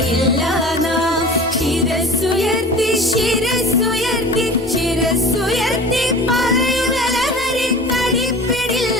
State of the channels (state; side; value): normal; both; correlation 0.39